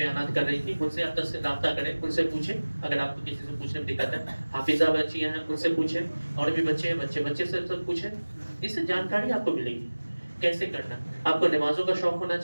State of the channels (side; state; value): both; inverted; correlation -1.00